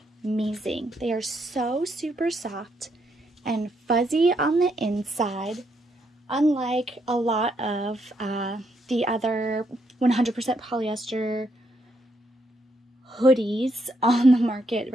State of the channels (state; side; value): normal; both; correlation 0.76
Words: They are so super soft and fuzzy on the inside, unlike a lot of the other 100% polyester hoodies on the market